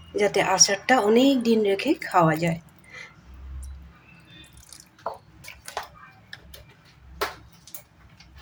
যাতে আচারটা অনেক দিন রেখে খাওয়া যায়।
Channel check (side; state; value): both; identical; correlation 1.00